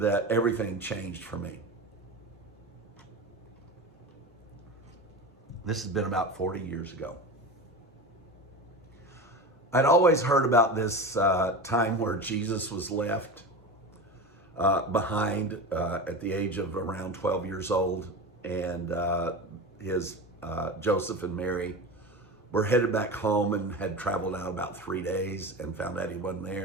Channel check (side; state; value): both; normal; correlation 0.27